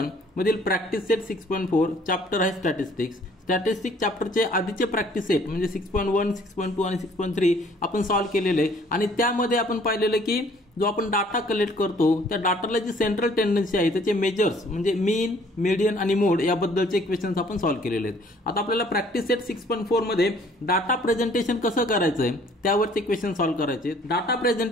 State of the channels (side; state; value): both; normal; correlation 0.58